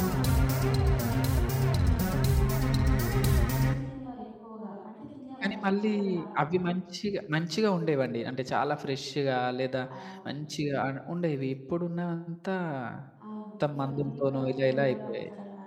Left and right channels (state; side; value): identical; both; correlation 1.00